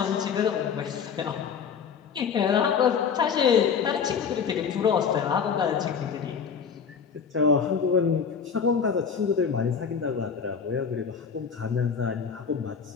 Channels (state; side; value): quieter; right; 6.5 dB